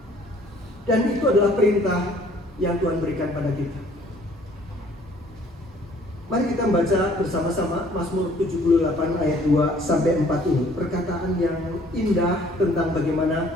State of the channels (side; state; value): both; normal; correlation 0.57